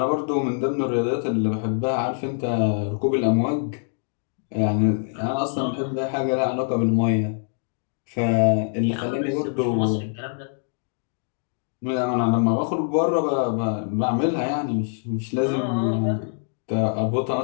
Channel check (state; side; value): silent; right; digital silence